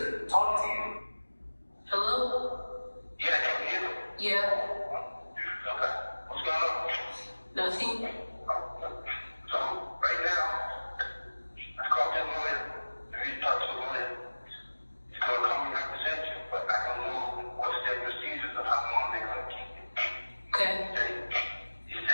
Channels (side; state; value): both; inverted; correlation -1.00